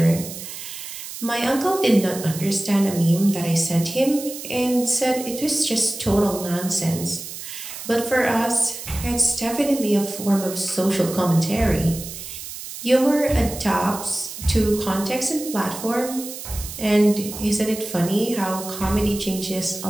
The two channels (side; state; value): right; noise; hiss, 10 dB below the sound